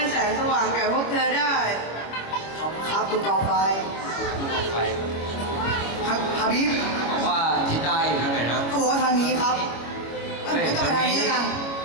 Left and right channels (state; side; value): late; right; 25 ms